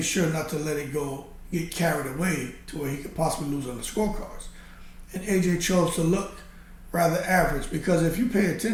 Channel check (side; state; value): both; identical; correlation 1.00